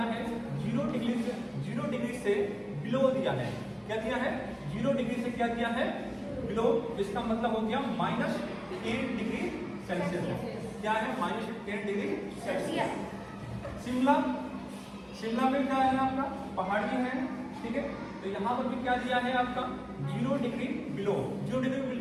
है 0 डिग्री से बिलो दिया है। क्या दिया है, 0 डिग्री से क्या दिया है बिलो, इसका मतलब हो गया -10 डिग्री सेल्सियस। क्या है -10 डिग्री सेल्सियस। शिमला में क्या है आपका पहाड़ी है, ठीक है। तो यहाँ पर भी क्या दिया है आपका 0 डिग्री बिलो। 0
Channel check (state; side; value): identical; both; correlation 1.00